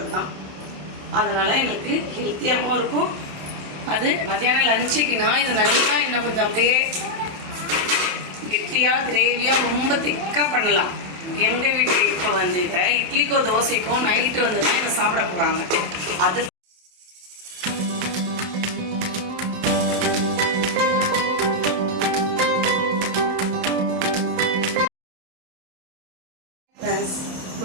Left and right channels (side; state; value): left; late; 27 ms